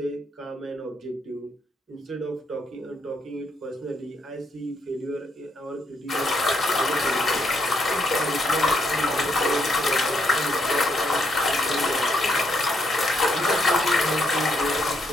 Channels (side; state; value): both; normal; correlation 0.75